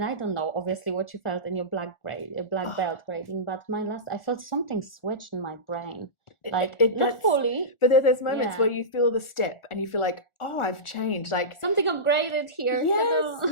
I don't know obviously what you felt in your black belt grading, but I felt something switched in my brain, like not fully, but there's moments where you feel the step and you feel like, oh, I've changed, like something upgraded here.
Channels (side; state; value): right; late; 1.4 ms